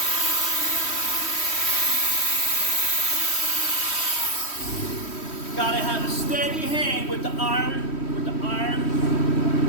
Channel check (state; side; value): late; right; 3.1 ms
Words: Gotta have a steady hand with the iron.